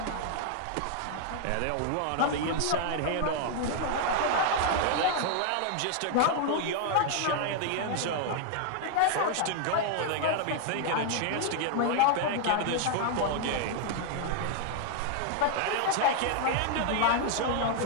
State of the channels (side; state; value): both; different; correlation 0.00